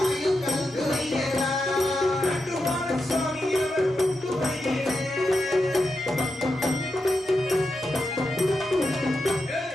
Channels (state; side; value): normal; both; correlation 0.87